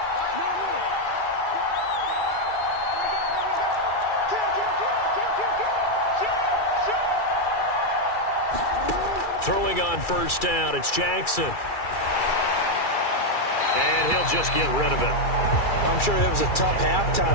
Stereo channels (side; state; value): right; late; 2.3 ms